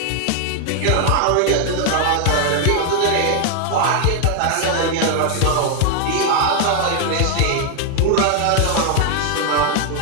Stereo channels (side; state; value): both; different; correlation 0.00